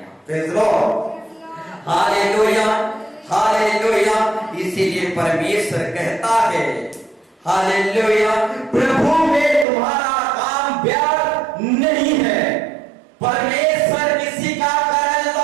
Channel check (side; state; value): left; drops out; at 9.7 s